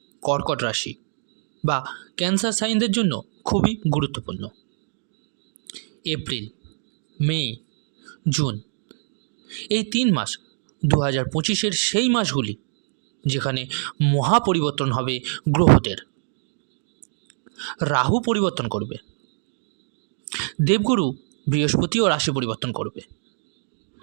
কর্কট রাশি বা ক্যান্সার সাইনদের জন্য খুবই গুরুত্বপূর্ণ। এপ্রিল, মে, জুন এই 3 মাস 2025-এর সেই মাসগুলি যেখানে মহা পরিবর্তন হবে গ্রহদের। রাহু পরিবর্তন করবে, দেবগুরু বৃহস্পতিও রাশি পরিবর্তন করবে,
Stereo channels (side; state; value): left; silent; digital silence